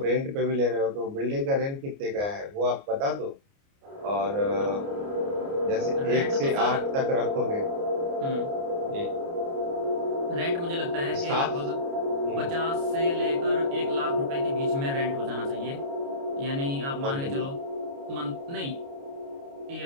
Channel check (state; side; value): late; left; 29 ms